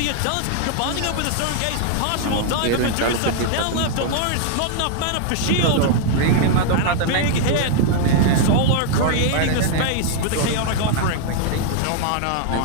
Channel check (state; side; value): different; both; correlation 0.00